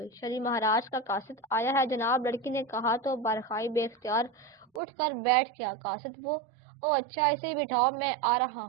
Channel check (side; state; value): left; drops out; at 4.8 s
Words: شری مہاراج کا قاصد آیا ہے جناب، لڑکی نے کہا تو بارخائی بے اختیار اٹھ کر بیٹھ گیا۔ قاصد وہ؟ او اچھا، اسے بٹھاؤ، میں آ رہا